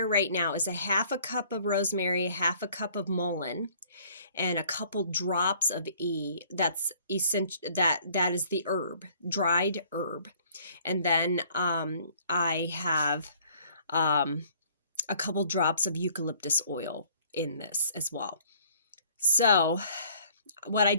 right now is a half a cup of rosemary, half a cup of mullein, and a couple drops of that's essential, that is the herb, dried herb. And then I have a couple drops of eucalyptus oil in this as well. So what I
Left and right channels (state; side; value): inverted; both; correlation -0.57